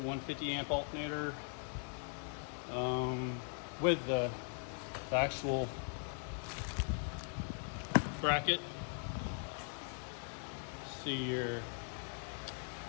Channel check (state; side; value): silent; right; 51 dB below the other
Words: amp alternator with the actual bracket. See here,